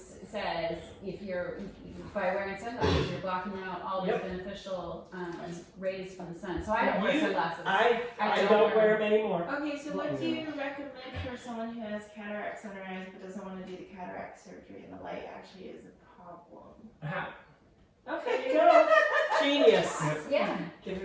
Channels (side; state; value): both; identical; correlation 1.00